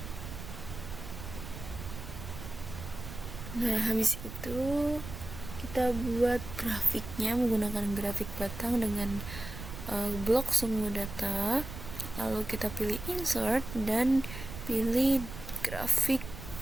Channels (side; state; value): right; noise; rumble, 10 dB below the sound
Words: Nah, habis itu kita buat grafiknya menggunakan grafik batang dengan blok semua data. Lalu kita pilih insert dan pilih grafik